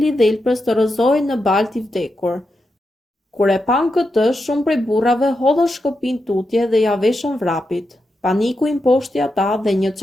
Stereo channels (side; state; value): both; normal; correlation 0.87